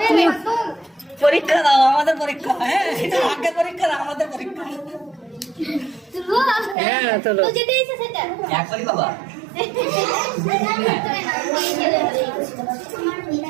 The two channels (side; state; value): left; drops out; at 6.8 s